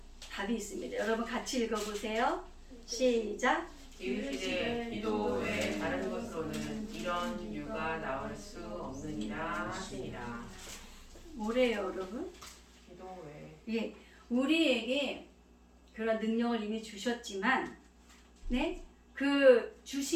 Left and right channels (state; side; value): identical; both; correlation 1.00